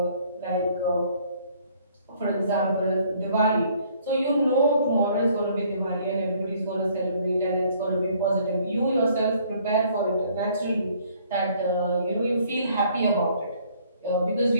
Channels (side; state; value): both; inverted; correlation -0.61